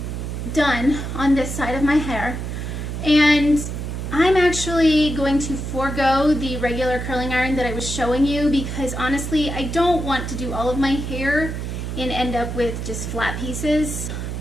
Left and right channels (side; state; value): right; noise; hum, 5 dB below the sound